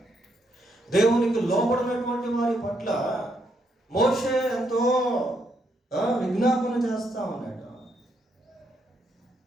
దేవునికి లోబడినటువంటి వారి పట్ల మోషే ఎంతో విజ్ఞాపన చేస్తా ఉన్నాడు.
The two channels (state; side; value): normal; both; correlation 0.76